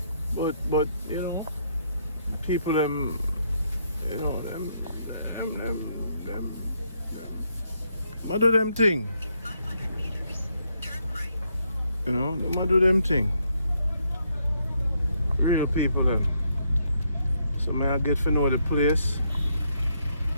But you know, people them what do them thing? You know, them do them thing. Real people them. So I get to know the place.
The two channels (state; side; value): inverted; both; correlation -0.75